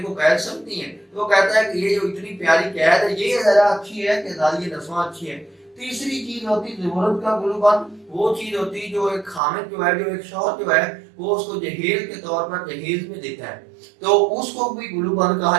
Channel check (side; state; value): left; drops out; at 9.4 s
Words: کو قید سمجھتی ہیں، تو وہ کہتا ہے کہ یہ جو اتنی پیاری قید ہے یہ زیادہ اچھی ہے کہ آزادی نسواں اچھی ہے. تیسری چیز ہوتی زمرد کا گلوبند، وہ چیز ہوتی جو ایک خامد جو ہے، جو ایک شوہر جو ہے وہ اس کو جہیز کے طور پر جہیز میں دیتا ہے، تو اس کو بھی گلوبند